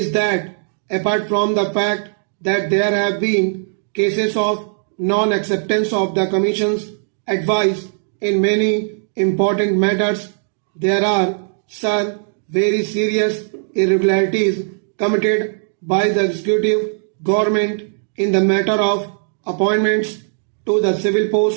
that apart from the fact that there have been cases of non-acceptance of the Commission's advice in many important matters, there are, sir, very serious irregularities committed by the executive government in the matter of appointments to the civil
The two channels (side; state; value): left; silent; digital silence